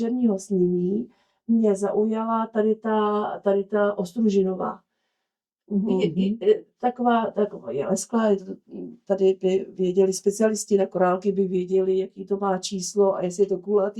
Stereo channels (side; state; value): both; identical; correlation 1.00